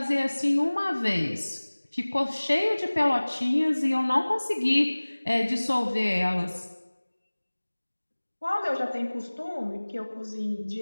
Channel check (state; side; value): inverted; both; correlation -1.00